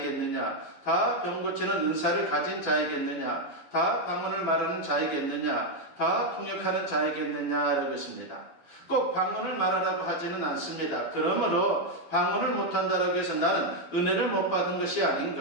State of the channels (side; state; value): right; late; 12 ms